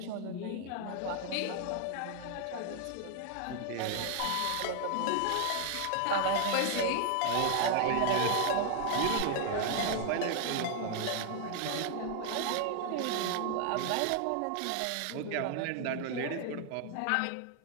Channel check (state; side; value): different; both; correlation 0.00